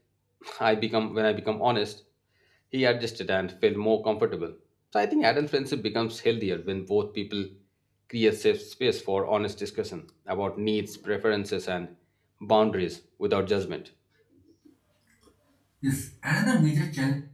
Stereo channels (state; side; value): identical; both; correlation 1.00